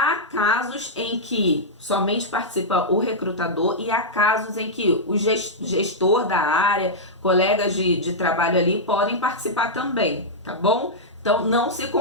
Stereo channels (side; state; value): both; normal; correlation -0.09